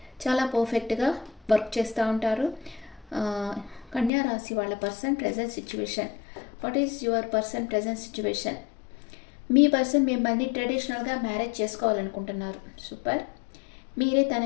చాలా పర్ఫెక్ట్గా వర్క్ చేస్తూ ఉంటారు. కన్యా రాశి వాళ్ళ person present situation. What is your person present situation? Me person మిమ్మల్ని ట్రెడిషనల్గా మ్యారేజ్ చేసుకోవాలనుకుంటున్నారు. సూపర్. మీరే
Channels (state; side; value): drops out; right; at 4.1 s